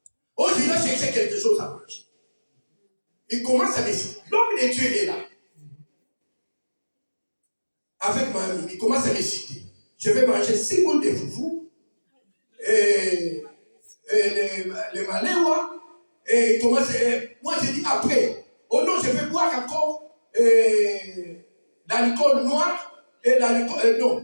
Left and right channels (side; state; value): both; inverted; correlation -1.00